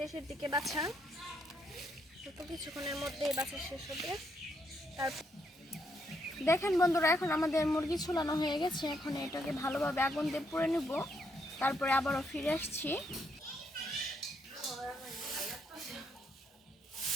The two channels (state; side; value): normal; both; correlation 0.75